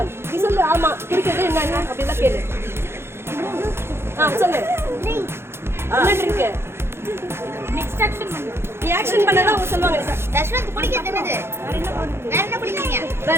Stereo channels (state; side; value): late; left; 0.12 ms